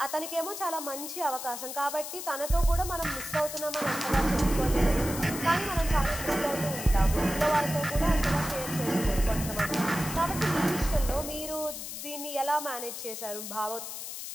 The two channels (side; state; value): left; noise; hiss, 8 dB below the sound